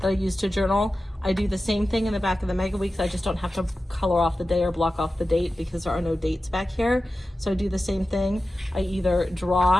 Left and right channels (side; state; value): both; normal; correlation 0.94